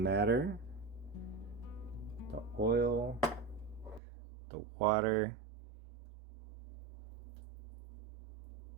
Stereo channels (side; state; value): left; drops out; at 4.0 s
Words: The oil, the water.